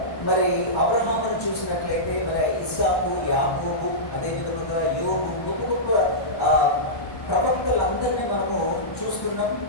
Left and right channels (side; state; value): right; late; 1.1 ms